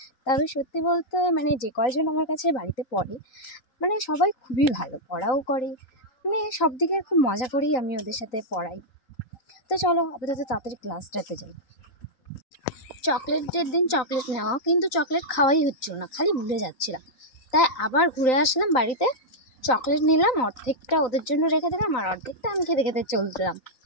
তবে সত্যি বলতে যে কয়জন আমার কাছে বাড়িতে পড়ে সবাই খুবই ভালো, পড়াও করে, সব দিকে খুব মজা করেই আমি ওদের সাথে পড়াই। তো চলো আপাতত তাড়াতাড়ি ক্লাসটাতে যাই। চকলেটের দিন চকলেট নেওয়া, কিন্তু চকলেট খাওয়াই হচ্ছিল না, খালি ভুলে যাচ্ছিলাম। তাই আবার ঘুরে আসলাম বাড়িতে, চকলেট নিলাম, অর্ধেকটা ওদের জন্য রেখে দিলাম আর অর্ধেকটা আমি খেতে খেতে চলছিলাম।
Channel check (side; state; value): right; late; 3.9 ms